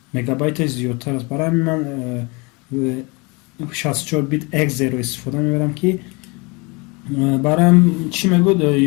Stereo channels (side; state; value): right; quieter; 28.1 dB